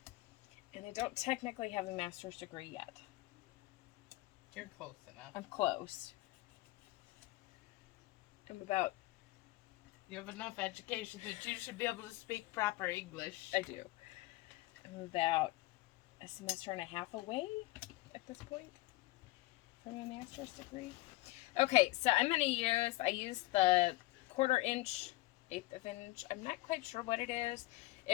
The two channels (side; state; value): right; quieter; 19.7 dB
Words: And I don't technically have a master's degree yet. You're close enough. I'm close. I'm about... You have enough education that you should be able to speak proper English. I do. I'm about a semester and a half away at this point from a master's degree. Okay, so I'm going to use, I used the 1/4 inch, 1/8 of inch. I'm not quite sure what it is.